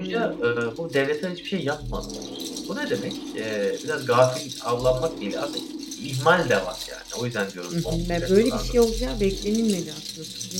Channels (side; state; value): both; identical; correlation 1.00